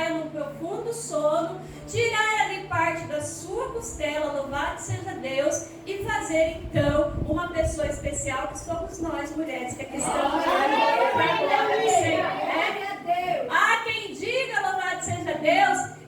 num profundo sono, tirar ali parte da sua costela, louvado seja Deus, e fazer então uma pessoa especial, que somos nós mulheres, que aqui estamos ali para a glória do Senhor. Há quem diga, louvado seja Deus,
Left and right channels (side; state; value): both; identical; correlation 1.00